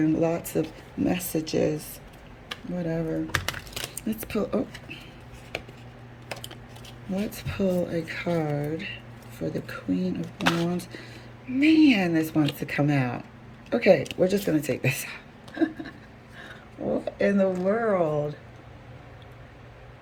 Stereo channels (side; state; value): both; identical; correlation 1.00